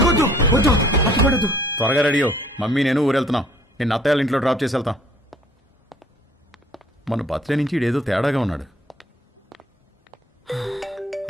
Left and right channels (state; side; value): normal; both; correlation 0.57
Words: వద్దు, వద్దు, అరటిపండు వద్దు. త్వరగా రెడీయో, మమ్మీ నేను ఊరెళ్తున్నాం. నేను అత్తయ్య ఇంట్లో డ్రాప్ చేసి వెళ్తాం. మన బర్త్డే నుంచి ఇడేదో తేడాగా ఉన్నాడు.